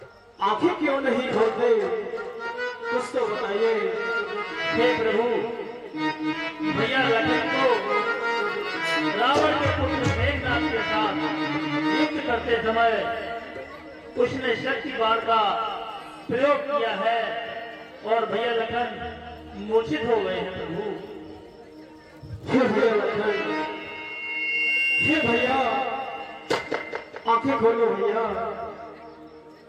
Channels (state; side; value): identical; both; correlation 1.00